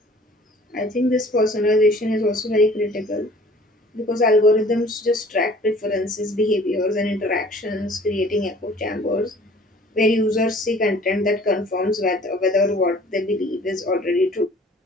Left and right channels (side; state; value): both; normal; correlation 0.51